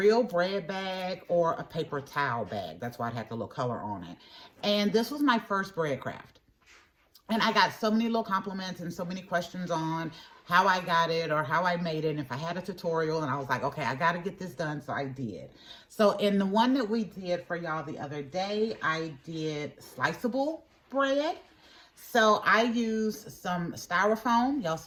bread bag or a paper towel bag. That's why it had the little color on it. And this was my first bread craft. And I got so many little compliments and so many questions on how I got it or how I made it. And if I had a tutorial, and I was like, okay, I got to get this done. So I did. So in the one that we did for y'all the other day, I did sliceable bread. So I used some styrofoam. Y'all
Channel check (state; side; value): identical; both; correlation 1.00